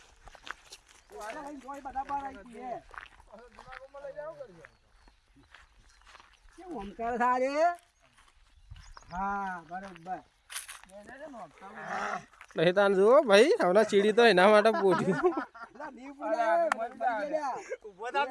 વાલા ભાઈ કોઈ બધા બાર આવી છે કેમ ઓમકાર થારે હા બરોબર નહીં તાન જુઓ ભાઈ હમણાં ચીડી તો એના માટે પોઠ્યું લા દીવ પુલા ઉભો થા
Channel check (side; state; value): both; identical; correlation 1.00